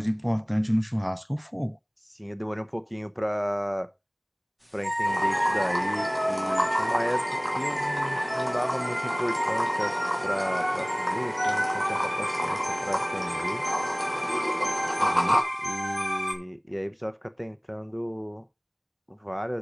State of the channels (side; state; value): both; identical; correlation 1.00